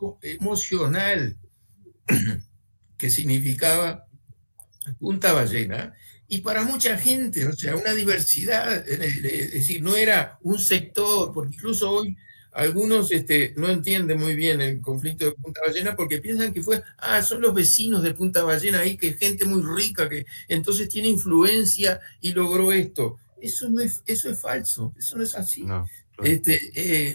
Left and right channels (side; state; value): both; inverted; correlation -1.00